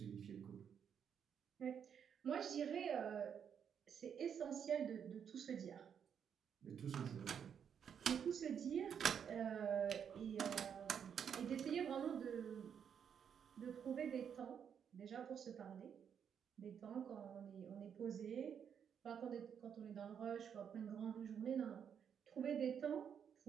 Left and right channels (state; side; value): quieter; left; 7.9 dB